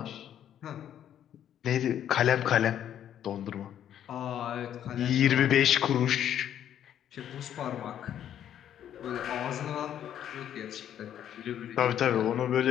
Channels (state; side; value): quieter; right; 10.3 dB